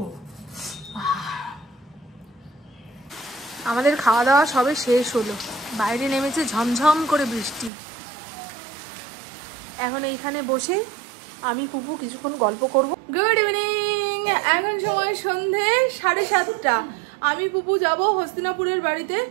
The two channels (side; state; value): left; drops out; at 7.7 s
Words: আমাদের খাওয়া দাওয়া সবে শেষ হলো। বাইরে নেমেছে ঝমঝম করে বৃষ্টি। এখন এইখানে বসে আমি পুপু কিছুক্ষণ গল্প করব। Good evening. এখন সময় সন্ধে 7:30। আমি পুপু যাব হস্তিনাপুরের বাড়িতে।